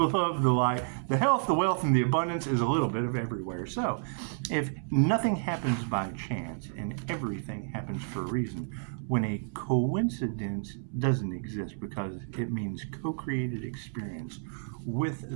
love, the light, the health, the wealth, and the abundance is a little bit of everywhere. So if nothing happens by chance and everything happens for a reason, when a coincidence doesn't exist, because it means co-created experience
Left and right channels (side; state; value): left; silent; 57 dB below the other